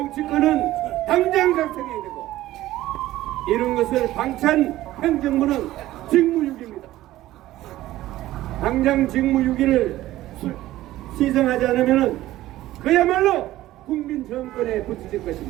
당장 작성해야 되고 이런 것을 방치한 행정부는 직무유기입니다. 당장 직무유기를 시정하지 않으면 그야말로 국민 정권에 붙일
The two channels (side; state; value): left; quieter; 15.4 dB